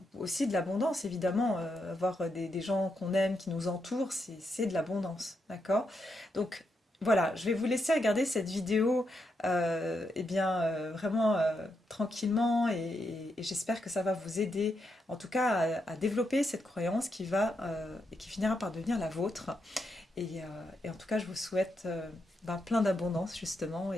aussi de l'abondance, évidemment. Avoir des gens qu'on aime, qui nous entourent, c'est de l'abondance, d'accord? Donc voilà, je vais vous laisser regarder cette vidéo eh bien, vraiment tranquillement et j'espère que ça va vous aider, en tout cas, à développer cette croyance qui va et qui finira par devenir la vôtre. Et en tout cas, je vous souhaite ben, plein d'abondance, justement,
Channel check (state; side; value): normal; both; correlation 0.82